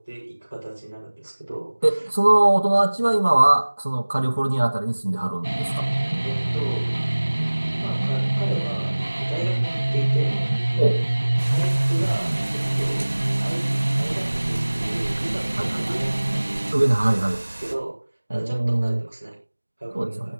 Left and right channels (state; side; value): inverted; both; correlation -1.00